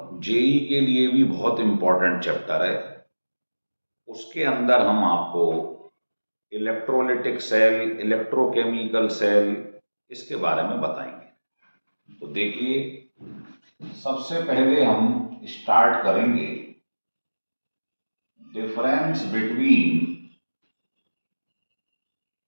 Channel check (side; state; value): both; inverted; correlation -1.00